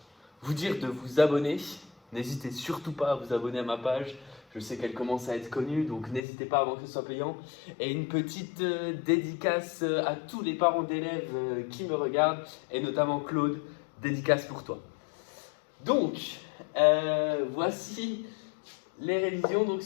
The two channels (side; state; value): right; drops out; at 6.2 s